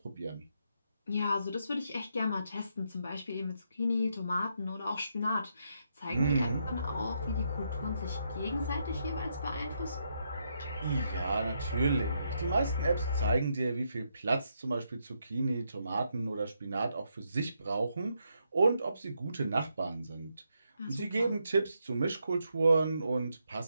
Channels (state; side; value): inverted; both; correlation -0.79